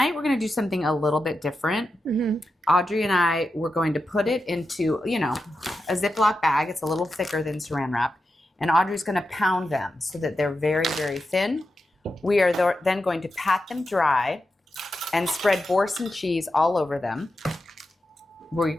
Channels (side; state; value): both; normal; correlation 0.89